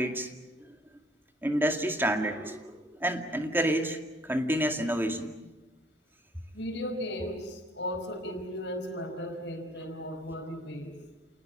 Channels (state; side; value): normal; both; correlation 0.59